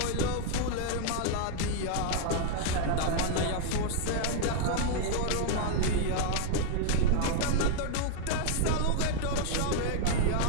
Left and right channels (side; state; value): both; different; correlation 0.00